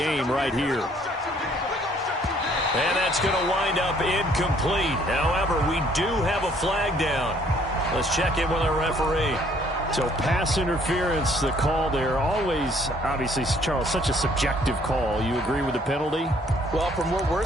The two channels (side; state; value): both; normal; correlation 0.62